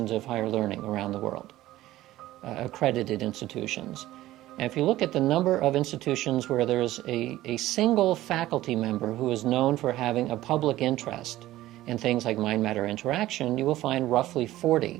of higher learning around the world, accredited institutions. And if you look at the number of institutions where there's a single faculty member who is known for having a public interest in things like mind-matter interaction, you will find roughly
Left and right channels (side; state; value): left; quieter; 15.5 dB